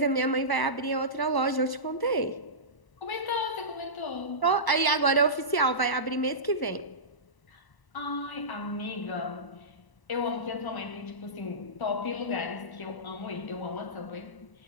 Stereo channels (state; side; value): late; right; 1.0 ms